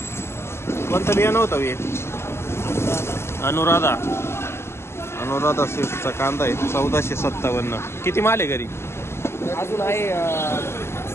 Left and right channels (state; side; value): late; right; 0.12 ms